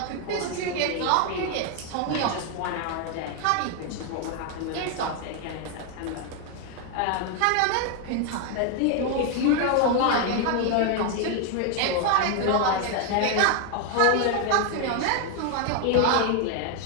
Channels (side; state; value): both; different; correlation 0.00